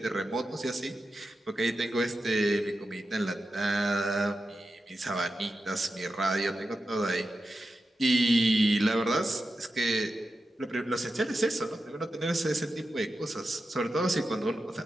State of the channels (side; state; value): both; normal; correlation 0.90